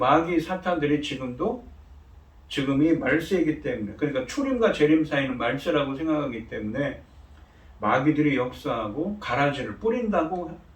사탄들이 지금이 말세이기 때문에, 그러니까 초림과 재림 사이는 말세라고 생각하기 때문에 마귀들이 역사하고 가라지를 뿌린다고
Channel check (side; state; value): both; identical; correlation 1.00